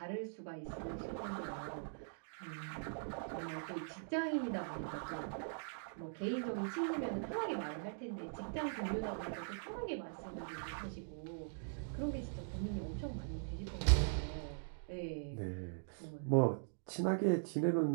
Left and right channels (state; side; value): silent; left; digital silence